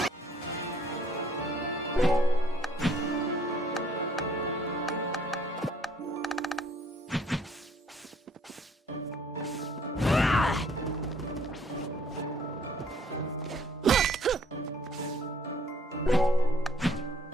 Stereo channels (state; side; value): normal; both; correlation 0.61